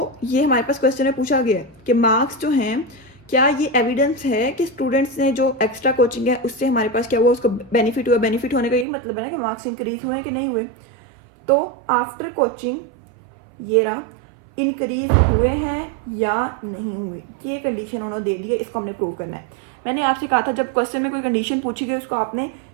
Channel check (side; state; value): left; drops out; at 8.8 s